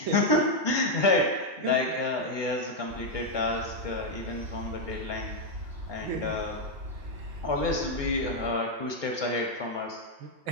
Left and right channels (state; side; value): late; left; 2.2 ms